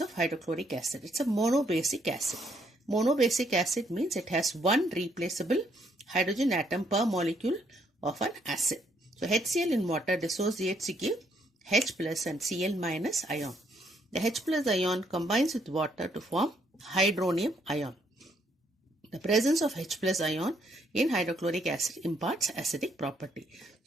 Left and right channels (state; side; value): normal; both; correlation 0.71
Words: of hydrochloric acid. It's a monobasic acid. Monobasic acid means it has one replaceable hydrogen atom per molecule of an acid. So HCl in water dissociates to give H plus and Cl minus ion. The H plus ion combines with water to form hydronium ion. The presence of H plus ion in hydrochloric acid imparts acidic property.